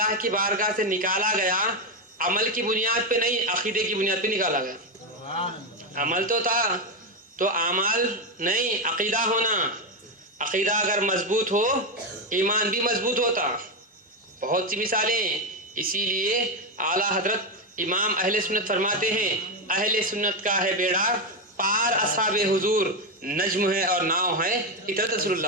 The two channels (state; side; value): normal; both; correlation 0.10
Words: کی بارگاہ سے نکالا گیا عمل کی بنیاد پہ نہیں, عقیدے کی بنیاد پہ نکالا گیا. عمل تو تھا تو اعمال نہیں, عقیدہ ہونا. عقیدہ اگر مضبوط ہو ایمان بھی مضبوط ہوتا. بہت سی مثالیں. اسی لیے اعلیٰ حضرت امام اہل سنت فرماتے ہیں اہل سنت کا ہے بیڑا پار, اصحاب حضور نجم ہے اور ناؤ ہے اطاعت رسول